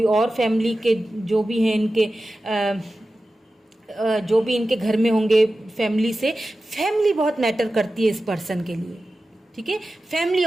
और फैमिली के जो भी हैं, इनके जो भी इनके घर में होंगे फैमिली से, फैमिली बहुत मैटर करती है इस पर्सन के लिए, ठीक है। फैमिली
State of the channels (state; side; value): normal; both; correlation 0.94